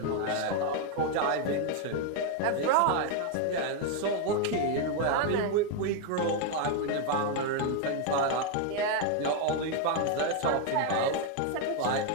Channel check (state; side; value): different; both; correlation 0.01